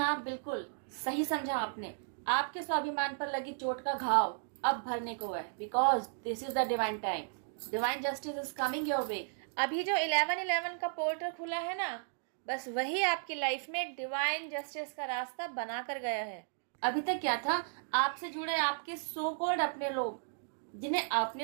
हाँ, बिल्कुल सही समझा आपने। आपके स्वाभिमान पर लगी चोट का घाव अब भरने को है, because this is the divine time. Divine justice is coming your way. अभी जो 11/11 का पोर्टल खुला है ना, बस वही आपकी लाइफ में डिवाइन जस्टिस का रास्ता बना कर गया है। अभी तक क्या था, आपसे जुड़े आपके सो कॉल्ड अपने लोग, जिन्हें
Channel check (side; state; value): left; silent; digital silence